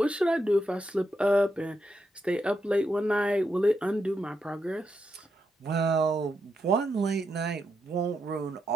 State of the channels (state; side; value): normal; both; correlation 0.83